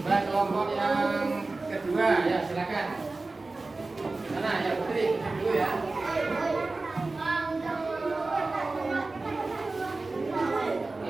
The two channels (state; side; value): quieter; left; 3.4 dB